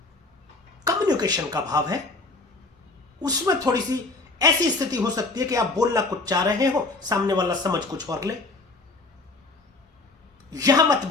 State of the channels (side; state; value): right; quieter; 3.4 dB